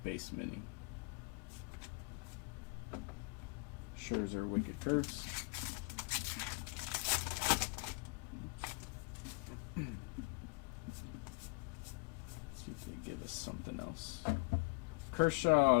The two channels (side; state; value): right; quieter; 29.6 dB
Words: base mini. Scherzer, wicked curves. See if they give us something else. Kershaw,